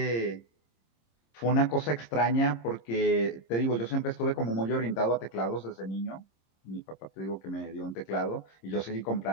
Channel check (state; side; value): late; right; 26 ms